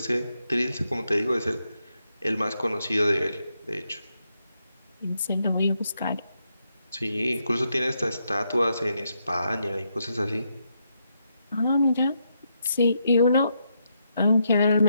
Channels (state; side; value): inverted; both; correlation -0.80